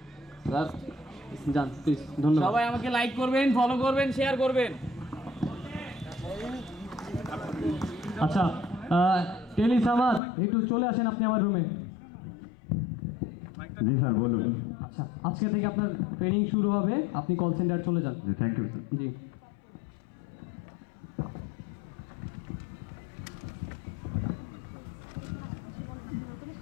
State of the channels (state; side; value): drops out; right; at 10.2 s